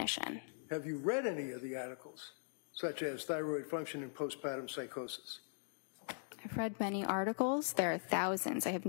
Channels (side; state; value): right; silent; digital silence